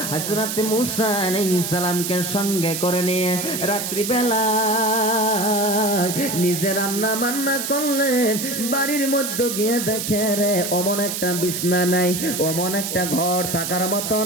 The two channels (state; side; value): noise; right; hiss, 4 dB below the sound